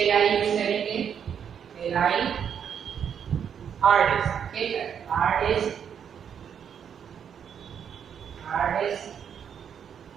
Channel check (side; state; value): left; quieter; 8.0 dB